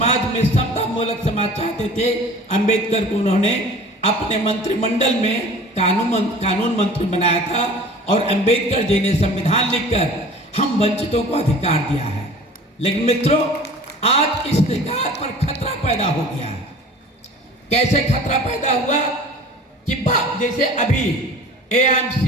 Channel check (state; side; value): normal; both; correlation 0.43